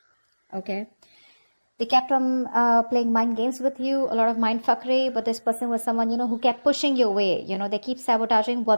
Okay, they kept on playing mind games with you, a lot of mind fuckery, but this person was someone, who kept pushing you away. They keep sabotaging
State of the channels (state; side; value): inverted; both; correlation -1.00